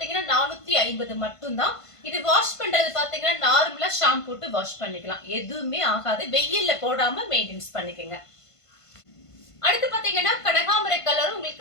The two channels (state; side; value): late; right; 1.5 ms